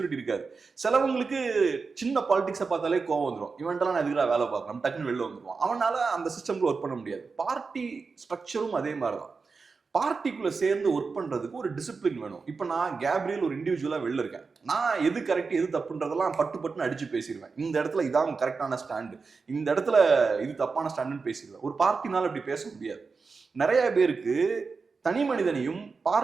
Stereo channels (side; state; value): left; quieter; 4.7 dB